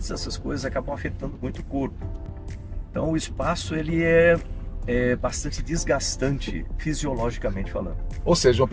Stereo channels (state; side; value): identical; both; correlation 1.00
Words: essas coisas acabam afetando muito o corpo. Então o espaço ele é bastante desgastante fisiologicamente falando. Ou seja, uma